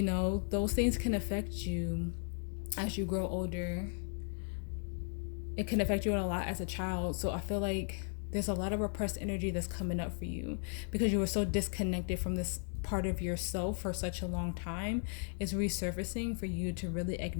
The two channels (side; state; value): right; silent; 54 dB below the other